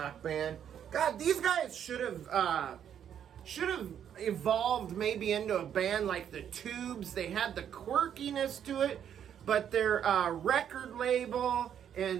band. God, these guys should have evolved maybe into a band like the Tubes. They had the quirkiness to it, but their record label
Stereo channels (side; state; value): left; quieter; 9.2 dB